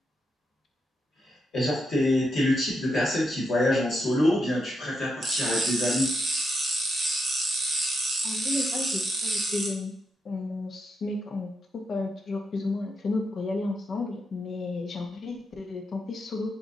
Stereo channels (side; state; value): both; normal; correlation 0.83